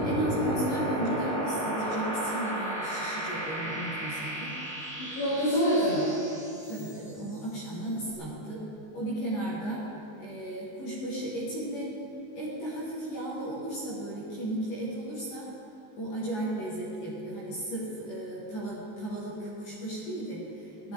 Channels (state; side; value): late; right; 19 ms